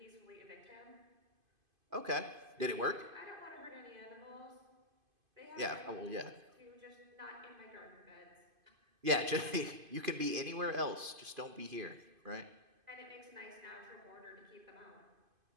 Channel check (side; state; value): left; late; 2.5 ms